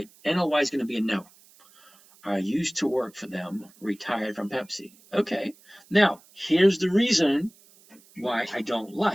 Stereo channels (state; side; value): noise; right; hiss, 27 dB below the sound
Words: NLY is going to be a no. All I used to work for them, retired from Pepsi. Okay, now here's the reason why I don't